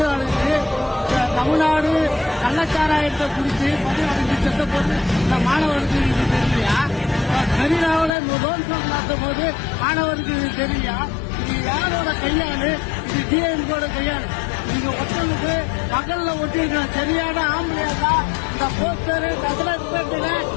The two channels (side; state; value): right; drops out; at 8.1 s